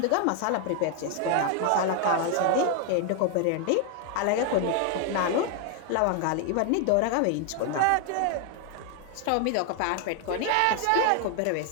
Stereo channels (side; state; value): both; different; correlation 0.00